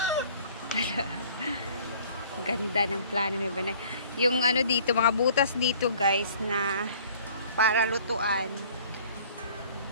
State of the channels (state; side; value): inverted; both; correlation -0.52